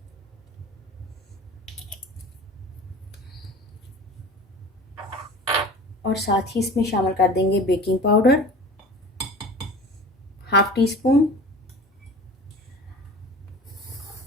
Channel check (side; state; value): both; normal; correlation 0.39